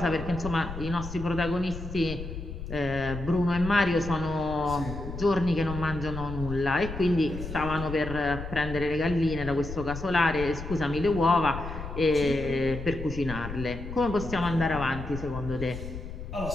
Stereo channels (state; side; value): noise; left; rumble, 9 dB below the sound